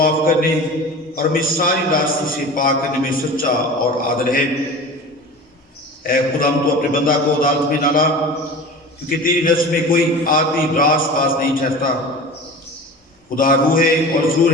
کرنے اور ہمیں ساری راستے سے پاک کرنے میں سچا اور عادل ہے۔ اے خدا، ہم تو اپنے بندہ کو عدالت میں نہ لا، کیونکہ تیری نزد میں کوئی آدمی راست باز نہیں ٹھہرتا۔ خدا روح ہے اور ضرور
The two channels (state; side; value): normal; both; correlation 0.36